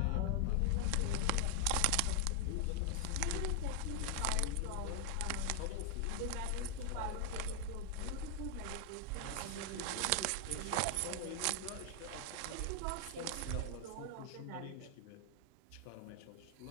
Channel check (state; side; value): different; both; correlation 0.00